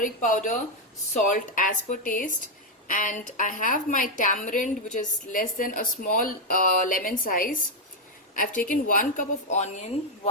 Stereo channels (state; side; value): normal; both; correlation 0.03